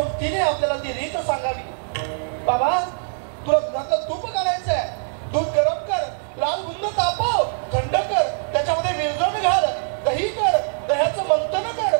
तिने आपल्याला ती रीत सांगावी. बाबा, तुला दुधातलं तूप काढायचं आहे, दूध गरम कर, लाल बुंद तापव, थंड कर, त्याच्यामध्ये विरजण घाल, दही कर, दह्याचं मंथन कर,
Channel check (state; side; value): silent; left; 64 dB below the other